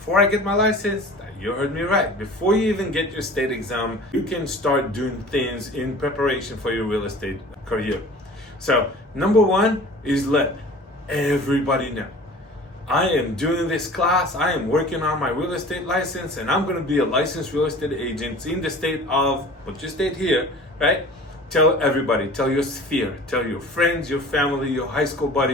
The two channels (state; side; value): normal; both; correlation 0.43